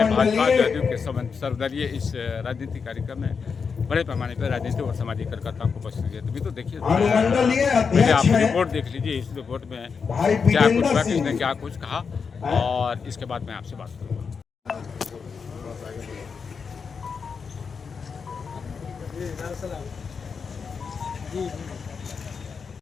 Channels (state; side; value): quieter; right; 5.7 dB